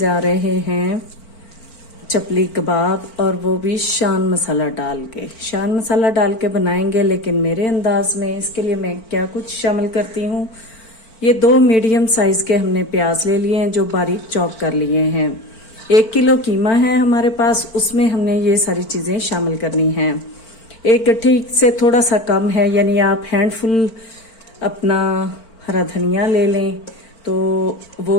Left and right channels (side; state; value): right; late; 4.4 ms